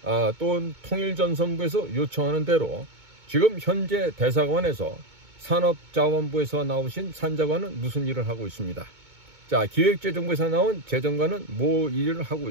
또는 통일전선부에서 요청하는 대로 지금 현재 대사관에서 산업자원부에서 나오신 산자관은 무슨 일을 하고 있습니다. 자, 기획재정부에서 나온 재정관은 뭐 일을 하고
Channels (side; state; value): left; late; 2.2 ms